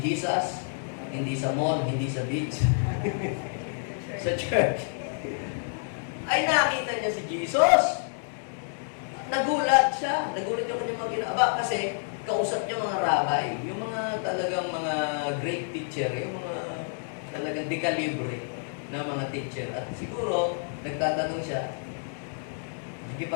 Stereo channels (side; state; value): right; silent; digital silence